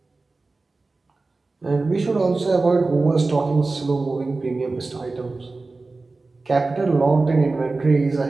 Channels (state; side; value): quieter; left; 3.5 dB